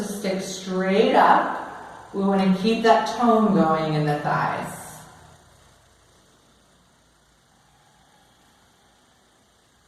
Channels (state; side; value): identical; both; correlation 1.00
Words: stick straight up. We want to keep that tone going in the thighs.